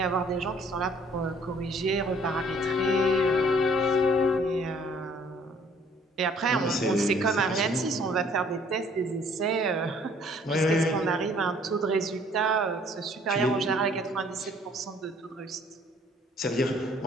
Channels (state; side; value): normal; both; correlation 0.58